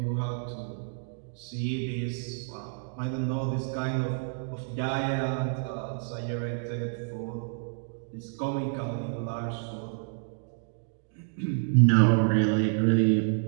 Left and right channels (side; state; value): left; silent; digital silence